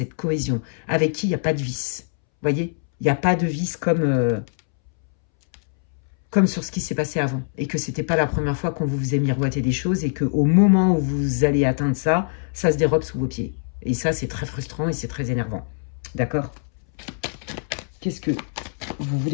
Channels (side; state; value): right; silent; 63 dB below the other